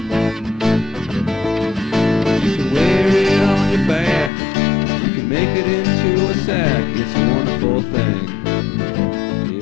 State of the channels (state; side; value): drops out; right; at 4.3 s